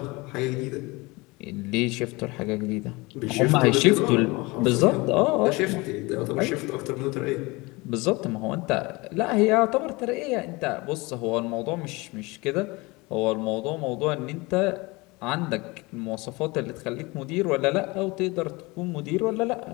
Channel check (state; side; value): quieter; right; 24.1 dB